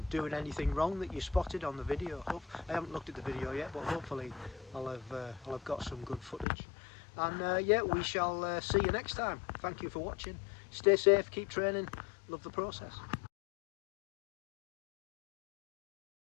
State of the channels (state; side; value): drops out; right; at 6.5 s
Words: doing anything wrong that you spotted on the video. I haven't looked at the video yet, but hopefully I'll have got some good footage. And yeah, we shall see you next time. Thank you for watching. Stay safe, keep training, love the process.